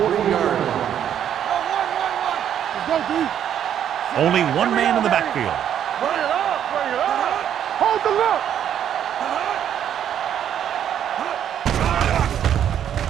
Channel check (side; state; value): left; quieter; 9.7 dB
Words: line. Let's go, D. Only one man in the backfield. Bring it up. Bring it up. Hold the look.